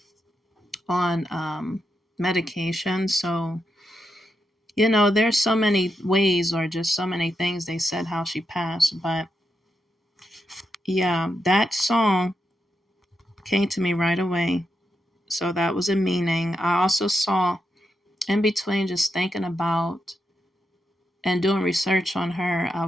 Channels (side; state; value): both; normal; correlation 0.85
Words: on medication. So, there's so many ways, or just so many things they said how she passed. But yeah, that song came to me right away. So that was a meaning. I also saw, in between just thinking about and doing research on her, I